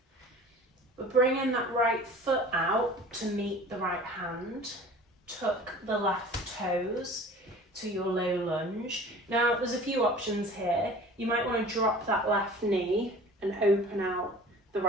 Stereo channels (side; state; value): both; normal; correlation 0.44